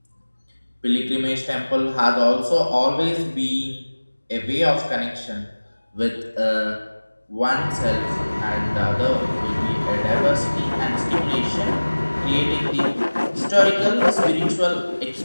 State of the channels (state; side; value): inverted; both; correlation -1.00